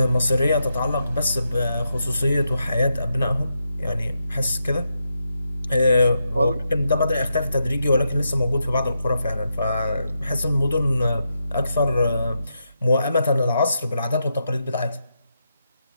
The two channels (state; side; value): inverted; both; correlation -0.84